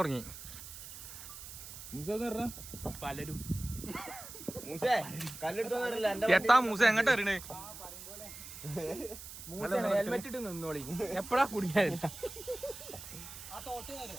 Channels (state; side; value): noise; right; hiss, 12 dB below the sound